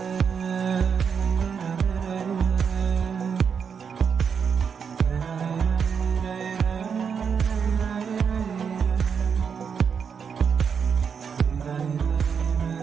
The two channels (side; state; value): left; quieter; 6.7 dB